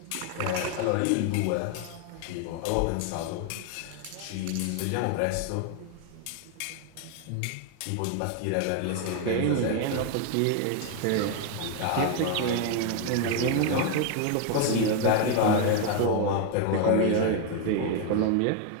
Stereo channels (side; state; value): both; different; correlation 0.01